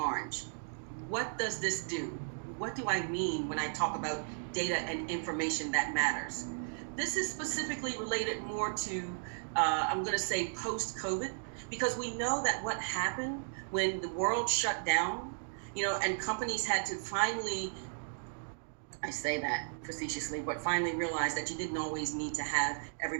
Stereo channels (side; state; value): left; silent; digital silence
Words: What does this do? What do I mean when I talk about data and information that matters? This is specifically related more to, I'm going to say, post-COVID, because we know that what happened when the world shut down, and companies had to finally, I say that facetiously, but finally realized that you didn't always need to have